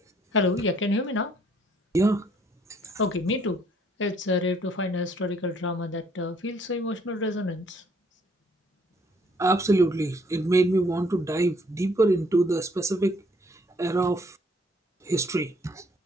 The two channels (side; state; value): both; normal; correlation 0.64